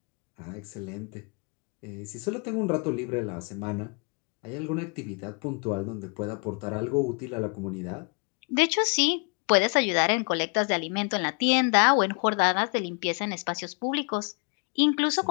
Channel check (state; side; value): quieter; right; 35.2 dB